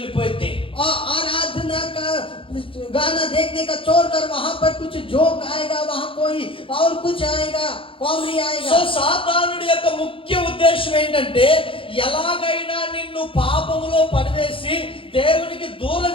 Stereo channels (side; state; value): right; late; 0.26 ms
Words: और आराधना का गाना देखने का छोड़कर वहां पर कुछ जोक आएगा, वहां कोई और कुछ आएगा, कॉमेडी సో आएगा। సాతానుడి యొక్క ముఖ్య ఉద్దేశం ఏంటంటే ఎలాగైనా నిన్ను పాపములో పడివేసి దేవునికి దూరం